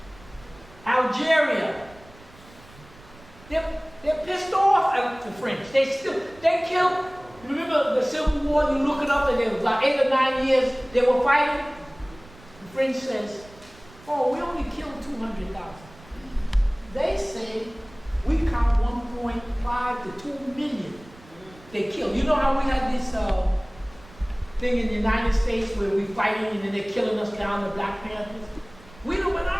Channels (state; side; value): noise; right; rumble, 23 dB below the sound